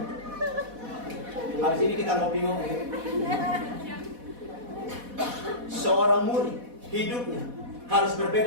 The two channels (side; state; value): left; late; 4.1 ms